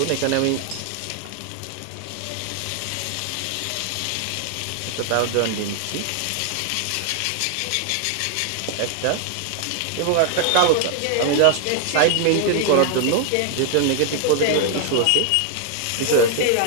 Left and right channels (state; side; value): different; both; correlation 0.00